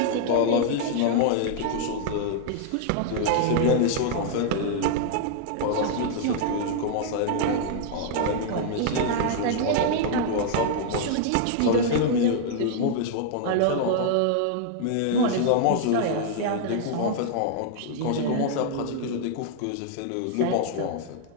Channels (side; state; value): both; different; correlation -0.01